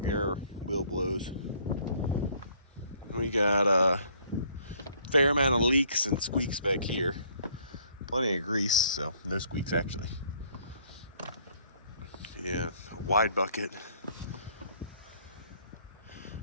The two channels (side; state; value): both; inverted; correlation -0.61